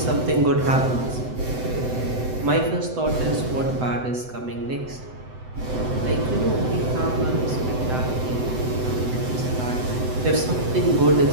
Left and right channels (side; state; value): left; late; 7.9 ms